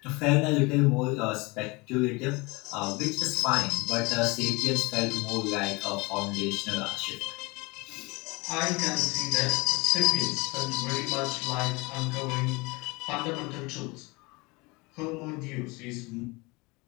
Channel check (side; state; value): right; quieter; 25.5 dB